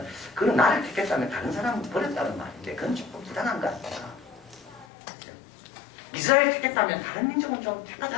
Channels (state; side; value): drops out; right; at 4.9 s